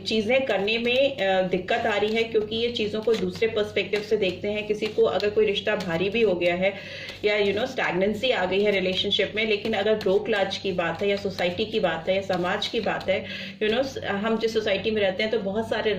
करने में दिक्कत आ रही है, क्योंकि ये चीज़ों को दूसरे पर्सपेक्टिव से देखते हैं। किसी को अगर कोई रिश्ता भारी भी हो गया है या स्टैग्नेंसी आ गई है रिलेशनशिप में, लेकिन अगर ब्रोक लाज की बात है या सोसाइटी की बात है या समाज की बात है, हम जिस सोसाइटी में रहते हैं तो बहुत सारे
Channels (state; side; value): identical; both; correlation 1.00